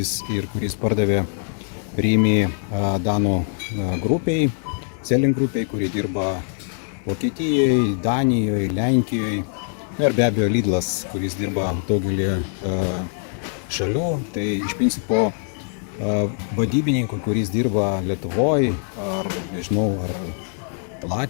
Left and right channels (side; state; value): right; silent; 58 dB below the other